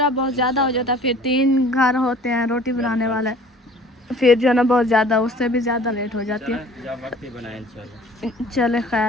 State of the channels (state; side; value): normal; both; correlation 0.49